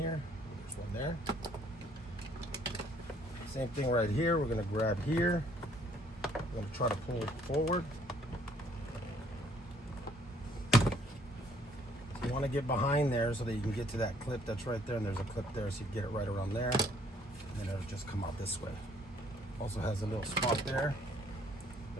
There's one there. Same thing right here. We're going to grab here. We're going to try to pull it forward. So you want to get behind there so that you can get to that clip that's right there. And there's a clip there, so you get it right around there. And then it'll just come out this way. Also has a little spot there.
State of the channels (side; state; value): both; normal; correlation 0.62